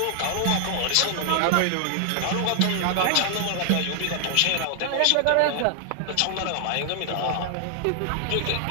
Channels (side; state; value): both; different; correlation 0.00